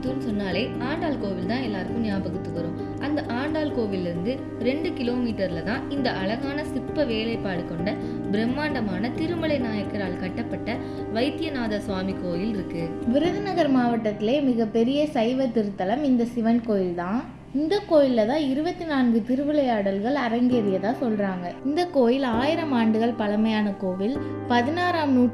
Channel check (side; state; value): both; identical; correlation 1.00